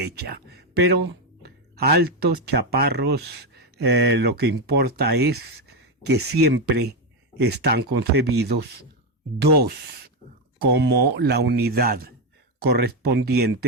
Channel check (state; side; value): normal; both; correlation 0.08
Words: Pero altos, chaparros, lo que importa es que siempre están concebidos dos como la unidad